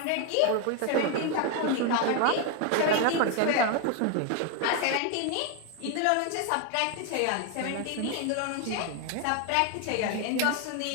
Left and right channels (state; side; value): different; both; correlation 0.01